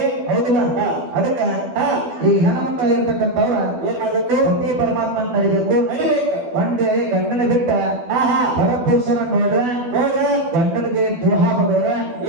ಹೌದಿಲ್ಲ ಹಾ. ಅದಕ್ಕ ಹಾ. ಈ ಹೆಣ್ಮಕ್ಳು ಇರ್ತಕ್ಕಂಥವ್ರ ಏನ್ ಮಾಡ್ಬೇಕು? ಪತಿ ಪರಮಾತ್ಮ ಅಂತ ನಡಿಬೇಕು. ನಡಿಬೇಕು. ಒಂದೇ ಗಂಡನ ಬಿಟ್ಟ ಆಹಾ. ಪರಪುರುಷನ ನೋಡ್ರೆ ನೋಡ್ರಿ. ಗಂಡನಿಗೆ ದ್ರೋಹ ಬರೋರ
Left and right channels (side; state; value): left; late; 12 ms